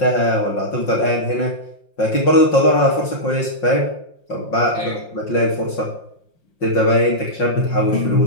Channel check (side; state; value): right; late; 5.7 ms